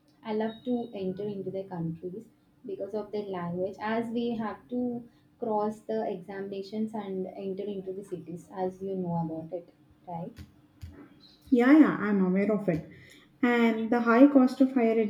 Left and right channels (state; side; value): identical; both; correlation 1.00